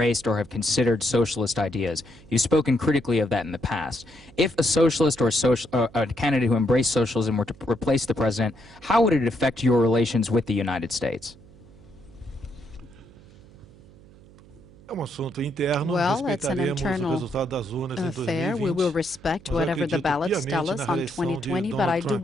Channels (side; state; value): right; noise; hum, 23 dB below the sound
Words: or have considered socialist ideas, you've spoken critically of that in the past. If a socialist or a candidate who embraced socialism were to replace the president, how would it affect your relations with the United States? Well, it's an internal affair. We will respect whatever the ballots tell us on 2020, but I do